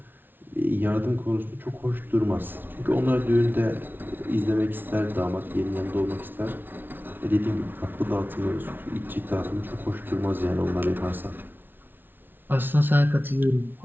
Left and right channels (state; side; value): late; left; 0.097 ms